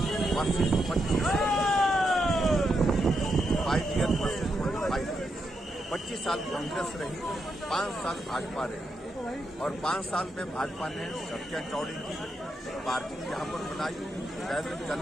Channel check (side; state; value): both; normal; correlation 0.83